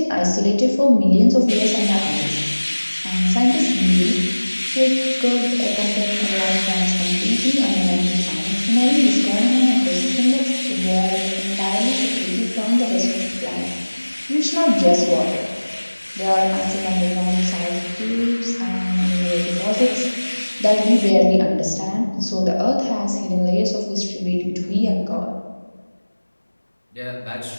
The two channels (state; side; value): inverted; both; correlation -1.00